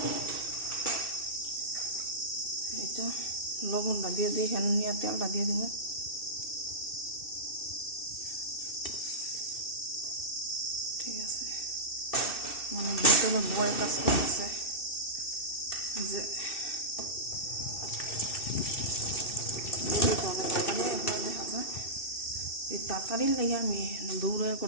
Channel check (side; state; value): right; late; 2.6 ms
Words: এটা লবণটা দিয়ে দিই, এখানে নিয়ে তেলটা দিয়ে দিব। ঠিক আছে, মানে ভিতরে বয় কাজ করতেছে যে অনেক তাড়াতাড়ি এগুলো দেখা যায়। এই তাড়াতাড়ির লাগে আমি দৌড়ে